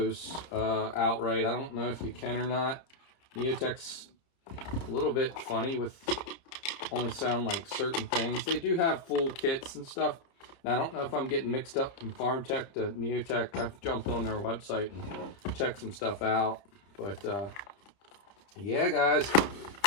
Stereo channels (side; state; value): right; late; 30 ms